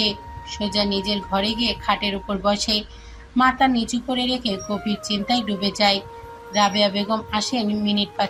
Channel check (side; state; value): both; identical; correlation 1.00